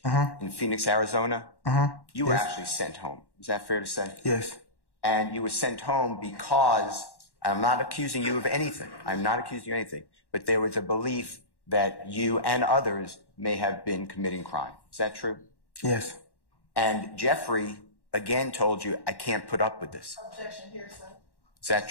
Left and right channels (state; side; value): late; right; 1.1 ms